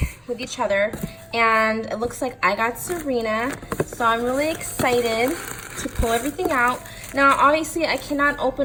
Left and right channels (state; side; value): identical; both; correlation 1.00